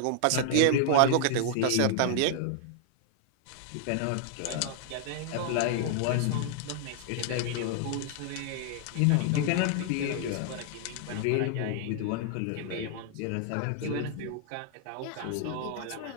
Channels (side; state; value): both; different; correlation 0.00